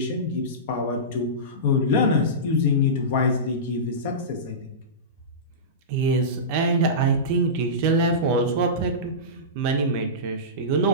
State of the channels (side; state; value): both; normal; correlation -0.20